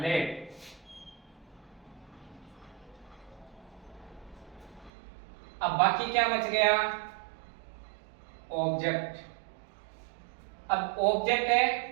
अब बाकी क्या बच गया, ऑब्जेक्ट। अब ऑब्जेक्ट है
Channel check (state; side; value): drops out; left; at 4.9 s